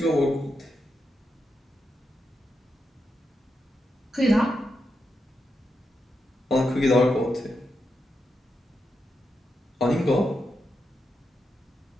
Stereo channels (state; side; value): normal; both; correlation 0.86